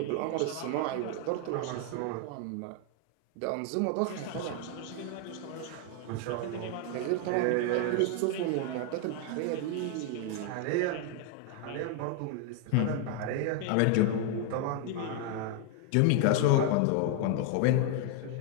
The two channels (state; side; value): different; both; correlation 0.00